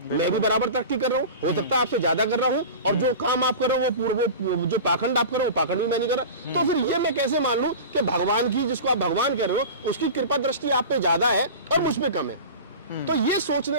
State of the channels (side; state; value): both; inverted; correlation -0.33